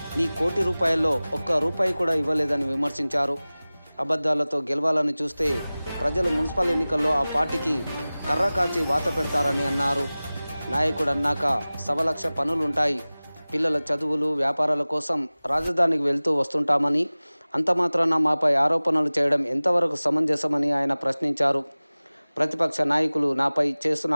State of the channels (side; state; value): both; inverted; correlation -0.98